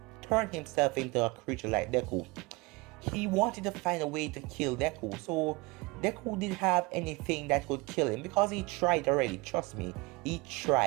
turn himself into a creature like Deku. He wanted to find a way to kill Deku, so Deku didn't have anything that could kill him because he tried already, trust me, he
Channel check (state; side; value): quieter; left; 24.9 dB